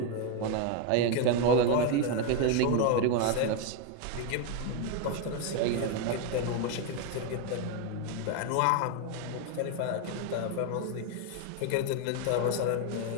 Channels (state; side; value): different; both; correlation 0.01